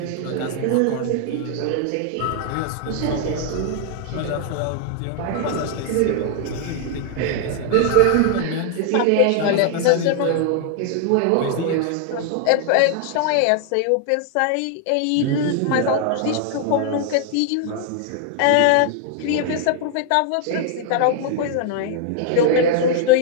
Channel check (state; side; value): different; both; correlation 0.00